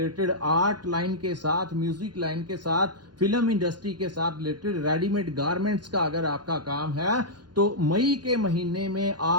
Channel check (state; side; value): late; left; 0.70 ms